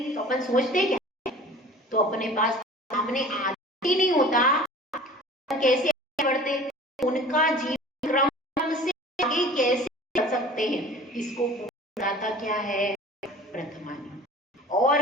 तो अपन सोचते क्या? तो अपने पास सामने आदि नहीं होता, कैसे बढ़ते? उनका जीवन क्रम से आगे कैसे बढ़ सकते हैं, इसको बताता क्या है? प्रथमानी। और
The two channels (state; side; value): normal; both; correlation 0.44